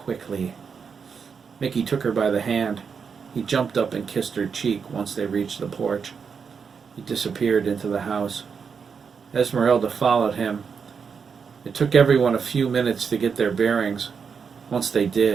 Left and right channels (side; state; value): left; quieter; 6.1 dB